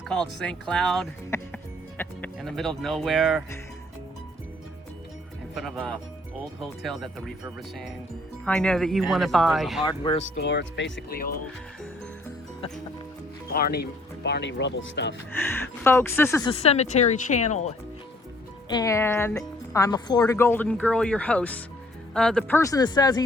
called St. Cloud, in the middle of nowhere, in front of a old hotel that they're refurbishing. I know that you And want to there's buy. a hardware store. It's basically old Barney Rubble stuff. Folks, this is a Cemetery Channel, and I'm a Florida Golden Girl, your host. The person that says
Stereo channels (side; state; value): both; normal; correlation 0.61